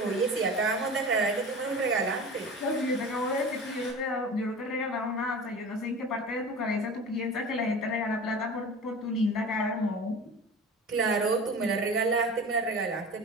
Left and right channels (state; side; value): normal; both; correlation 0.35